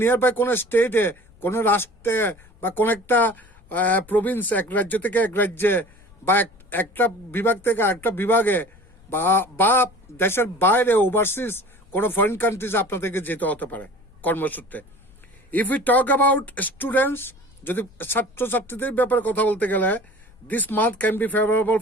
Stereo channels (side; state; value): left; noise; rumble, 26 dB below the sound